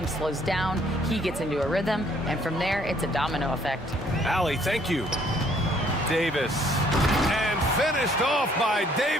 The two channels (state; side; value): normal; both; correlation 0.63